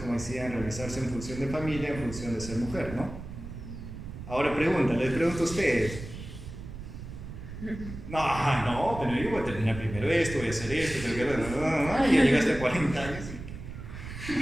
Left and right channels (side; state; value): right; noise; rumble, 11 dB below the sound